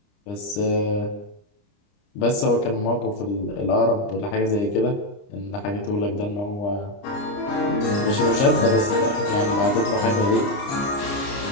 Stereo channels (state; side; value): late; right; 29 ms